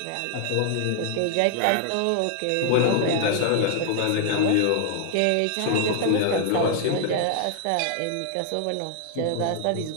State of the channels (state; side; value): different; both; correlation 0.00